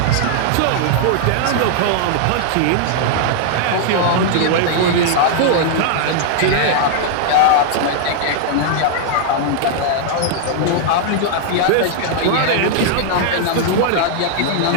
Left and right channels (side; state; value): both; different; correlation -0.01